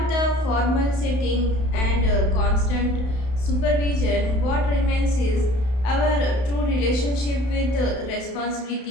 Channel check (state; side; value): late; right; 31 ms